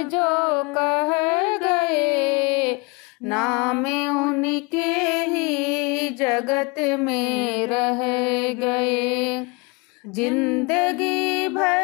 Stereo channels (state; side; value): quieter; right; 28.6 dB